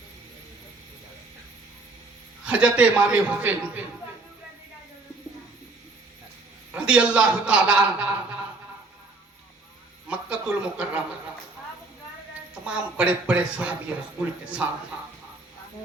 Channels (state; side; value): quieter; left; 3.4 dB